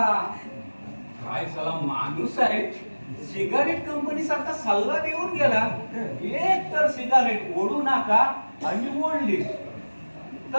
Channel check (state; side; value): inverted; both; correlation -1.00